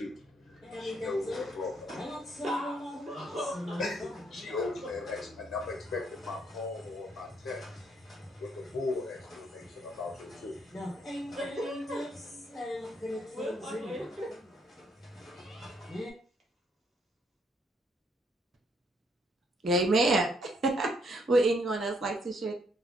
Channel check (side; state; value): both; normal; correlation 0.71